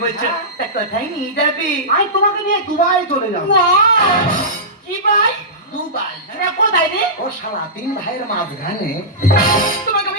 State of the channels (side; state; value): both; normal; correlation -0.16